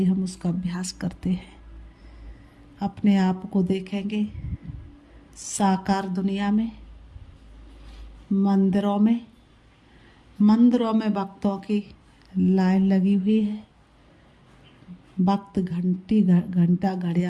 हम उसका अभ्यास करते हैं। अपने आप को देखेंगे साकार दुनिया में, मंदिरों में भक्तों की लाइन लगी हुई है। भक्त घंटा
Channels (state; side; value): identical; both; correlation 1.00